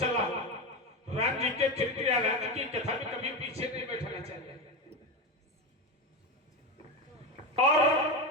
हो राम जी के चरित्र या राम जी की कथा में कभी पीछे नहीं बैठना चाहिए और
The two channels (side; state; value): both; normal; correlation 0.18